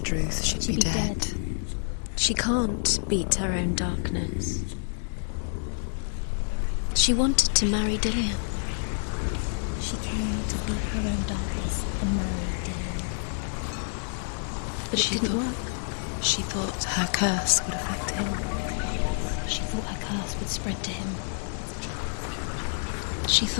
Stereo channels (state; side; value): silent; right; 56 dB below the other